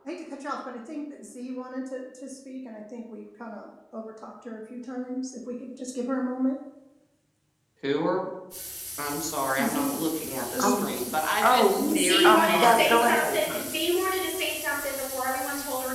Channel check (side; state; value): both; identical; correlation 1.00